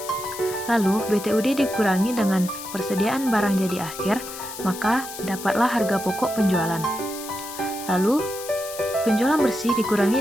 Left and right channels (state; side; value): noise; left; hiss, 11 dB below the sound